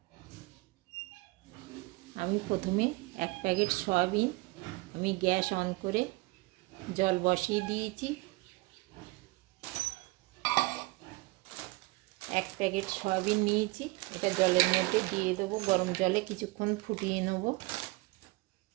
আমি প্রথমে 1 প্যাকেট সয়াবিন আমি গ্যাস অন করে জল বসিয়ে দিয়েছি। 1 প্যাকেট সয়াবিন নিয়েছি, এটা জলের মধ্যে দিয়ে দেবো। গরম জলে কিছুক্ষণ ফুটিয়ে নেব।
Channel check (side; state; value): left; quieter; 23.1 dB